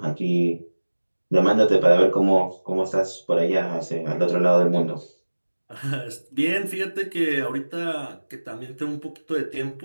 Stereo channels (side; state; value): both; inverted; correlation -1.00